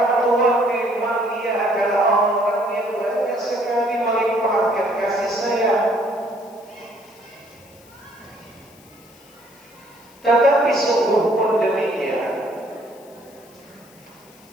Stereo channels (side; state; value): left; noise; hiss, 26 dB below the sound